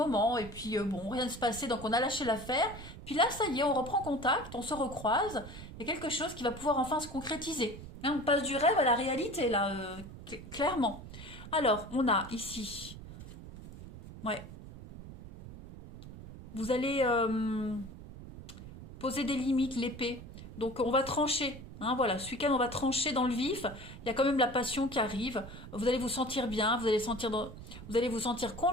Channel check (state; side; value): noise; right; rumble, 14 dB below the sound